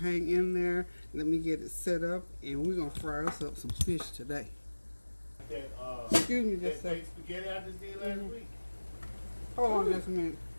in there. Let me get it set up, and we're going to fry us up some fish today. Excuse me just a second. Spaghetti I just did last week. Hold on just a minute.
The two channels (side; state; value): both; inverted; correlation -1.00